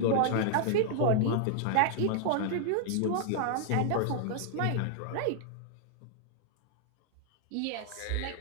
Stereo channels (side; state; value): both; different; correlation -0.01